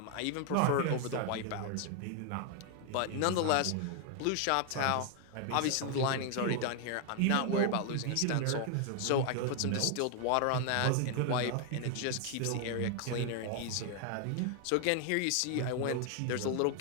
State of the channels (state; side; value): different; both; correlation 0.00